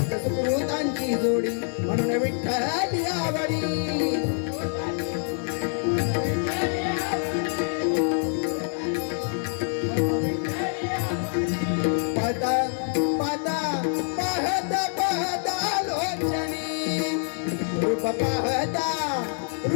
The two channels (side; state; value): right; silent; 61 dB below the other